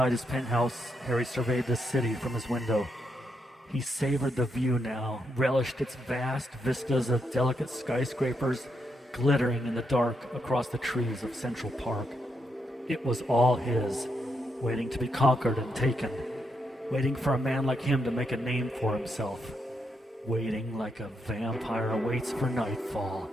his penthouse, Harry surveyed the city from his window. He savored the view now, relished its vast vistas of delicate skyscrapers glittering in the dark across the trees of Central Park. It was all his, waiting to be conquered and taken, waiting for a man like him to make a name for himself, waiting like a vampire waits for nightfall,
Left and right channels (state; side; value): normal; both; correlation 0.80